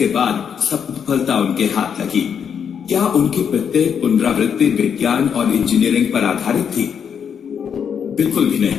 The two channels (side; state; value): right; quieter; 7.5 dB